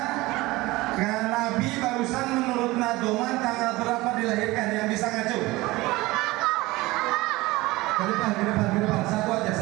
Nabi barusan menurut Nadoman tanggal berapa dilahirkan? Yang bisa ngacu? Ke depan. Satu aja.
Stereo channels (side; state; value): left; quieter; 20.2 dB